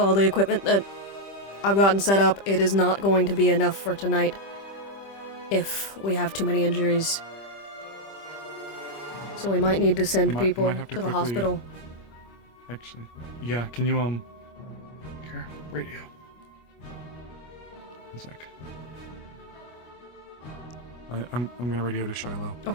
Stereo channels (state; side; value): late; right; 25 ms